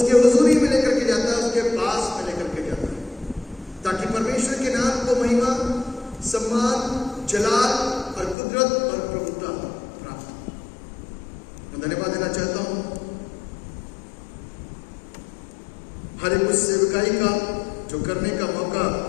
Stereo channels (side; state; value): right; drops out; at 8.3 s